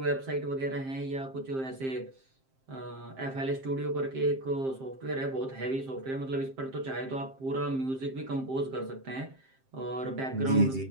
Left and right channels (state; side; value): late; left; 7.6 ms